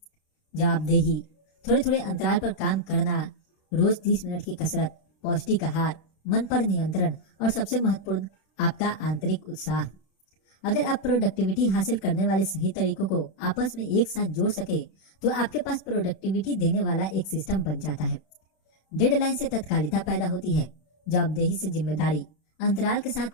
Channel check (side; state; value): right; late; 31 ms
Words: जवाबदेही, थोड़े थोड़े अंतराल पर काम करना, रोज 30 मिनट की कसरत, पौष्टिक आहार, मन पर नियंत्रण और सबसे महत्वपूर्ण आपका आंतरिक उत्साह। अगर आप प्रोडक्टिविटी हासिल करने वाले सही तरीकों को आपस में एक साथ जोड़ सके तो आपके पास प्रोडक्टिविटी देने वाला एक सिस्टम बन जाता है। डेडलाइन से तत्कालिकता पैदा होती है, जवाबदेही से जिम्मेदारी, अंतराल के